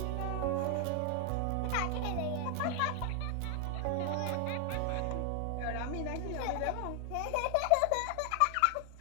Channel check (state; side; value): different; both; correlation 0.00